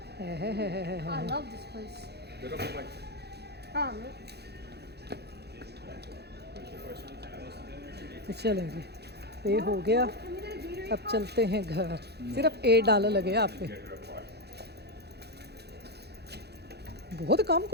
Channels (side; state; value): left; late; 0.48 ms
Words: I love this place. हाँ तो चलें जी, पे हो गया। अब चलते हैं घर। सिर्फ $8 लगे आप पे। बहुत कम